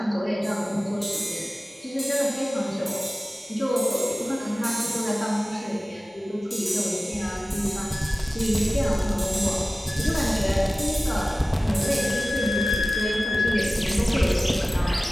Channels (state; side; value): normal; both; correlation 0.97